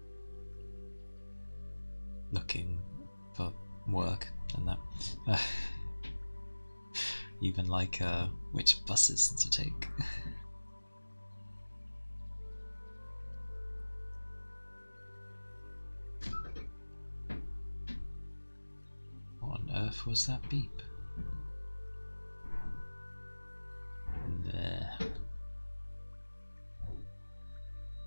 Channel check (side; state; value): both; inverted; correlation -1.00